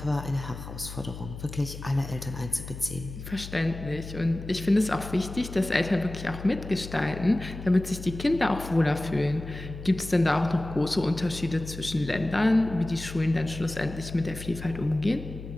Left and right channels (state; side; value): noise; left; hum, 11 dB below the sound